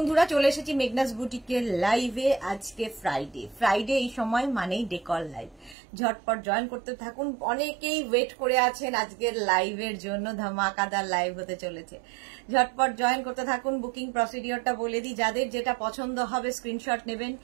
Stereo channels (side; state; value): left; drops out; at 5.8 s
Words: চলে এসেছি মেঘনাস বুটিকের লাইভে। আজকে ফ্রাইডে এই সময় মানেই ডেকর লাইভ। ঝটপট জয়েন করতে থাকুন। অনেকেই ওয়েট করে আছেন আজকের লাইভের জন্য, ধামাকাদার লাইভ হতে চলেছে। ঝটপট জয়েন করতে থাকুন। বুকিং প্রসিডিওরটা বলে দিই, যাদের যেটা পছন্দ হবে স্ক্রিনশট নেবেন,